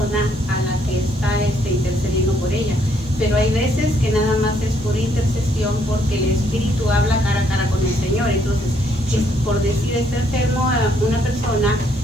a la que está intercediendo por ella. Pero hay veces que nada más es por intercesión porque el Espíritu habla cara a cara con el Señor. Entonces, por decir, está enfermo a una persona,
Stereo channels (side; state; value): both; normal; correlation 0.70